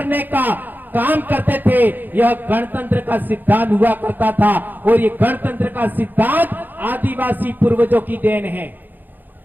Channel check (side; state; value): left; late; 0.087 ms